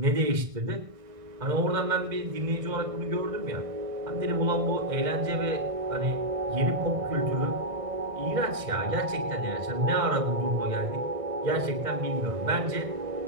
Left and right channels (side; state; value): left; late; 1.6 ms